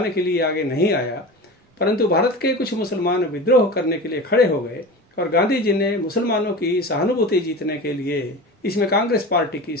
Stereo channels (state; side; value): normal; both; correlation 0.31